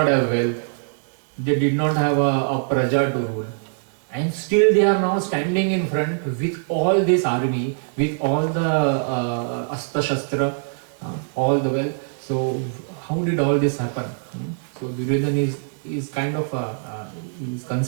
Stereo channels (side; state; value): left; silent; digital silence